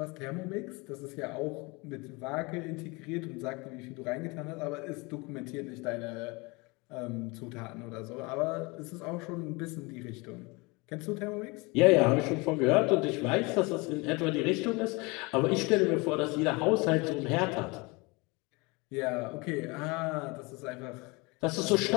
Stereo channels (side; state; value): right; quieter; 26.6 dB